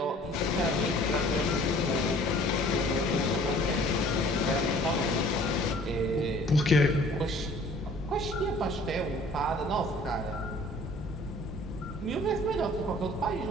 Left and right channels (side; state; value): both; normal; correlation 0.52